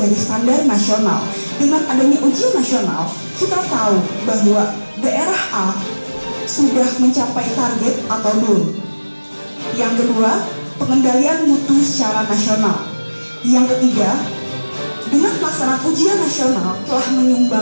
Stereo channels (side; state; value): both; inverted; correlation -1.00